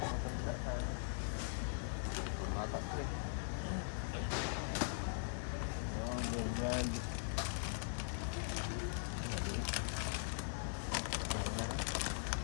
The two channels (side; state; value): right; silent; digital silence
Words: Bata ko eh. Oh, ganyan.